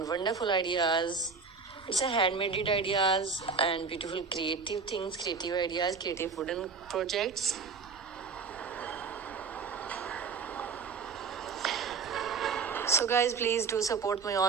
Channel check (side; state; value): left; quieter; 5.1 dB